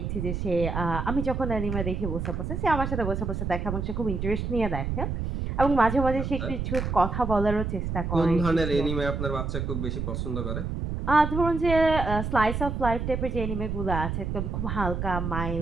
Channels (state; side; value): noise; right; rumble, 3 dB below the sound